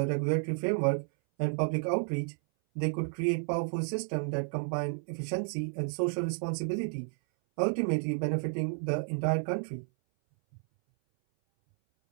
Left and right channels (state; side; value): silent; left; 57 dB below the other